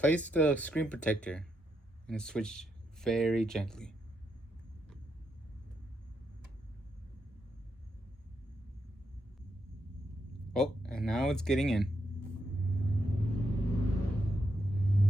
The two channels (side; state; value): both; normal; correlation 0.81